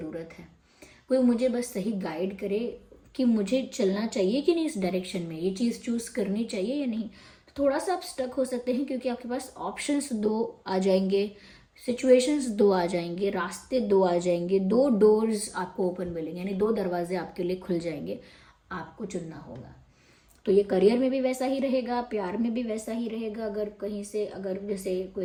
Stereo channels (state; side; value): identical; both; correlation 1.00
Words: है, कोई मुझे बस सही गाइड करे कि मुझे चलना चाहिए कि नहीं इस डायरेक्शन में, ये चीज़ चूज़ करनी चाहिए या नहीं। तो थोड़ा सा आप स्टक हो सकते हैं क्योंकि आपके पास ऑप्शंस दो आ जाएंगे, सिचुएशंस दो आ जाएंगे, रास्ते दो आ जाएंगे, दो डोर्स आपको ओपन मिलेंगे, यानी दो दरवाजे आपके लिए खुल जाएंगे, आपको चुनना होगा। तो ये करियर में भी वैसा ही रहेगा, प्यार में भी वैसा ही रहेगा, अगर कहीं से अगर जैसे